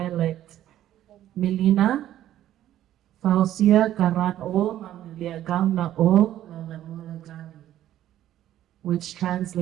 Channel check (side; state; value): left; quieter; 12.5 dB